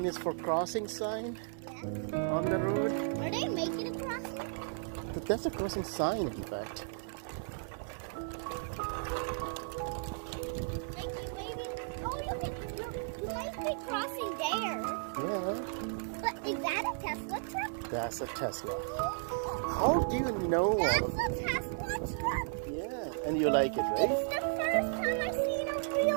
is for crossing sign on the road. Are they making a crossing? But that's a crossing sign, in fact. Like you maybe. Oh, you might be crossing there. Yeah, But is that a Tesla truck? that's a Tesla. How do you know all That's of a Tesla truck. Yeah, and you like it, right? It's the first time I've seen a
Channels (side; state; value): left; silent; 55 dB below the other